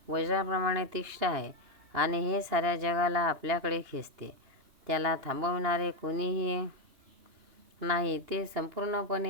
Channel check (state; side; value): late; left; 2.9 ms